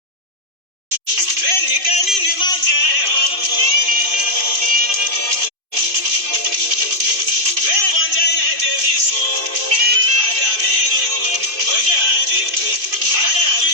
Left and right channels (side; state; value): left; late; 2.5 ms